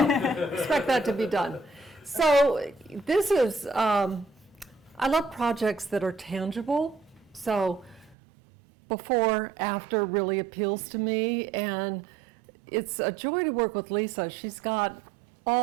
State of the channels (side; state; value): left; drops out; at 8.2 s